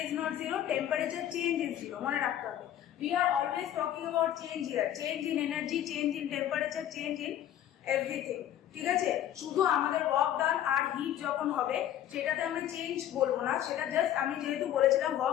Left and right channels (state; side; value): quieter; right; 11.4 dB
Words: is not 0, temperature change is 0, মনে রাখতে হবে। We are always talking about change here, change in energy, change in temperature, change in everything। ঠিক আছে, শুধু আমাদের ওয়ার্ক ডান আর hit যখন হবে সেটাতে আমরা চেঞ্জ বলবো না, সেটা জাস্ট আমি যেহেতু বলেছিলাম